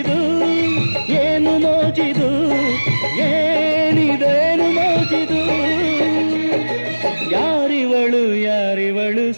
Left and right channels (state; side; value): inverted; both; correlation -1.00